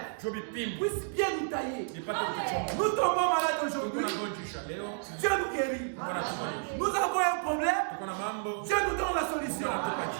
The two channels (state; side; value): silent; left; digital silence